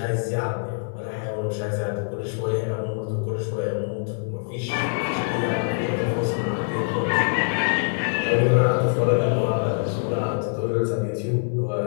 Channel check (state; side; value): silent; right; 62 dB below the other